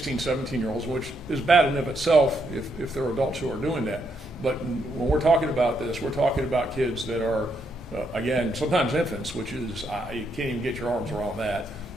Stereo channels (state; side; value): normal; both; correlation 0.77